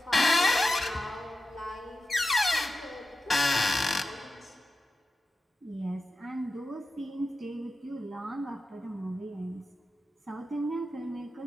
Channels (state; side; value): normal; both; correlation 0.92